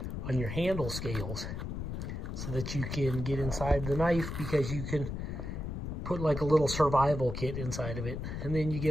on your handle scales so that you can get inside the knife, because you can put like a little survival kit inside of it. And then you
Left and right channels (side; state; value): left; noise; rumble, 5 dB below the sound